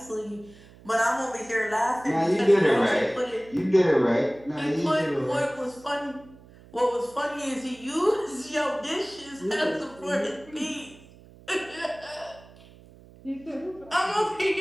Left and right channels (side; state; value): right; noise; hum, 23 dB below the sound